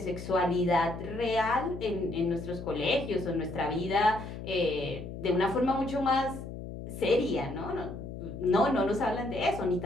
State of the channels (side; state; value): left; noise; hum, 9 dB below the sound